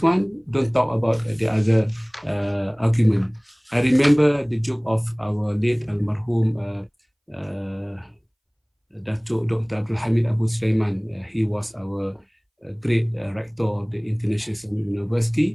one, don't talk about the other argument. I remember the joke of our late almarhum Dato Dr. Abdul Hamid Abu Sulaiman. He was our great rector of the International Islamic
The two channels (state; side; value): identical; both; correlation 1.00